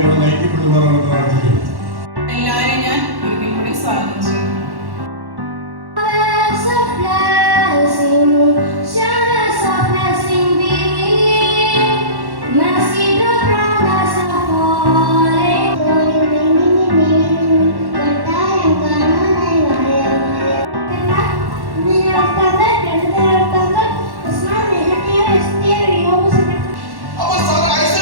നയിക്കപ്പെടുവാനാണ് പ്രാർത്ഥിക്കുന്നത്. എല്ലാവരെയും ഞാൻ ഒരിക്കൽ കൂടി സ്വാഗതം ചെയ്യുന്നു.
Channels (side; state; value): left; late; 1.1 ms